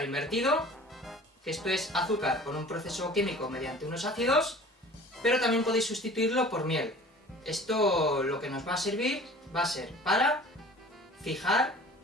invertido, que esto es azúcar con un proceso químico mediante unos ácidos, pero también podéis sustituirlo por miel. Esto lo que nos va a servir va a ser para fijar,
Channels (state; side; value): normal; both; correlation 0.45